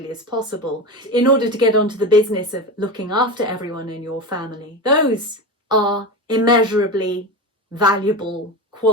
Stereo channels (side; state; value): both; normal; correlation 0.23